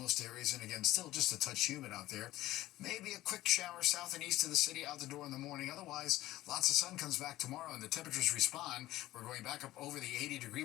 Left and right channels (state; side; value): quieter; right; 16.0 dB